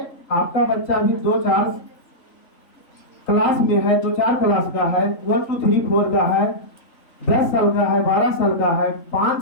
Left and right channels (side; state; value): right; late; 3.5 ms